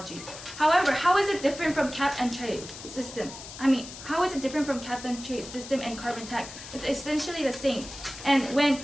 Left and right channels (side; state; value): left; noise; hiss, 13 dB below the sound